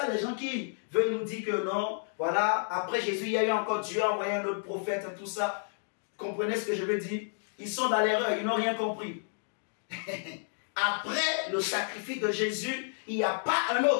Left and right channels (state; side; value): silent; right; digital silence